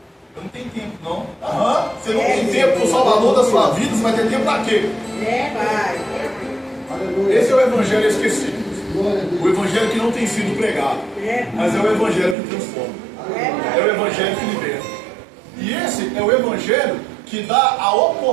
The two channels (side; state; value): left; drops out; at 12.4 s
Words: Eu não tenho tempo, não. Aham. Você não tem tempo para o Salvador da sua vida, você vai ter tempo para quê? Pai. Esse é o Evangelho esquecido. O Evangelho que não tem sido pregado. Mas é o Evangelho que transforma. É o Evangelho que liberta. E esse é o Evangelho que dá a